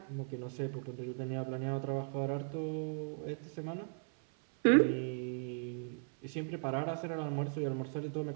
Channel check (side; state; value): left; silent; 53 dB below the other